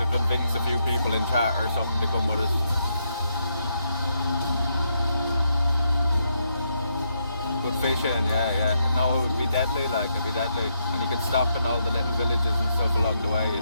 convince a few people in chat or something to come with us. Good fishing, yeah. No, it would be deadly, like, it'd be deadly. And you could stop in all the little villages and stuff along the way, you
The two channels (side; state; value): both; inverted; correlation -0.78